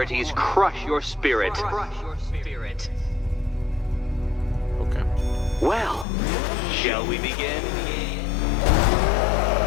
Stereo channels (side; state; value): right; drops out; at 6.1 s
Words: crush your spirit. Okay. Well, shall we begin?